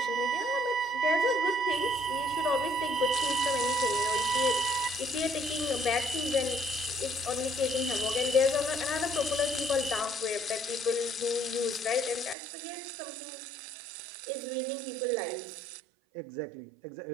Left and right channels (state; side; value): drops out; left; at 12.4 s